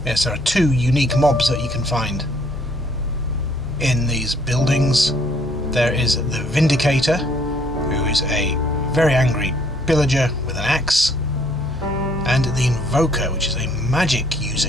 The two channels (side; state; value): both; normal; correlation 0.63